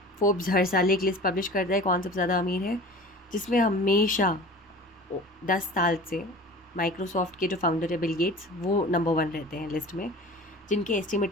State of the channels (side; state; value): both; normal; correlation 0.40